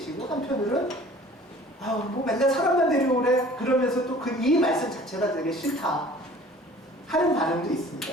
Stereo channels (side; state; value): both; normal; correlation 0.48